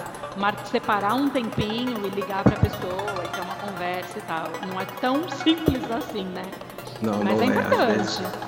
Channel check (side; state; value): both; identical; correlation 1.00